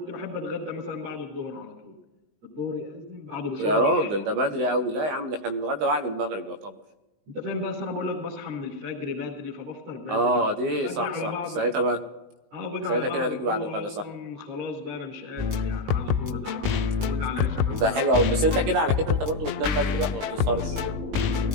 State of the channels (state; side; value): late; left; 19 ms